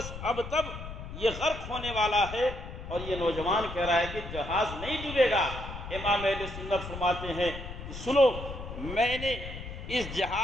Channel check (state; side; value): noise; left; rumble, 9 dB below the sound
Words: اب تب یہ غرق ہونے والا ہے، اور یہ نوجوان کہہ رہا ہے کہ جہاز نہیں ڈوبے گا۔ امام اہل سنت فرماتے ہیں کہ سنو، میں نے اس